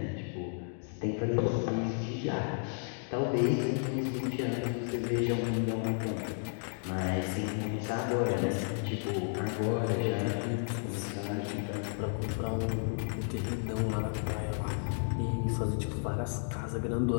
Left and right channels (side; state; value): right; silent; 56 dB below the other